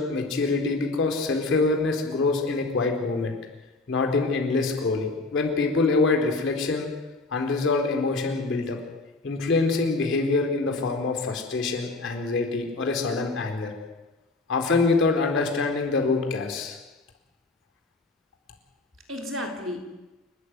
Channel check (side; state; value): right; quieter; 3.3 dB